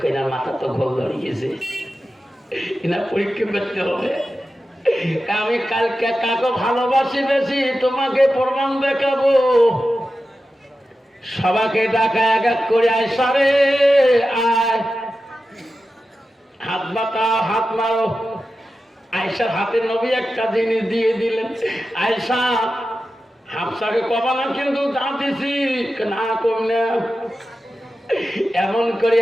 কইনার মাথা তো ঘোল ধরিয়েছে, এনার পরীক্ষা করতে হবে। আমি কালকে কাকে ভালোবাসি বেশি তোমাকে প্রমাণ দেখাবো। সবাইকে ডাকা এক এক করে আয়সা রে আয়, হাত বাতাও হাত মারো। আয়সার হাতে নবী একটা জিনিস দিয়ে দিলেন, আয়সা হাফসাকে কবা না কিন্তু যা দিছি না কম না। এমন করে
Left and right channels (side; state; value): both; normal; correlation 0.92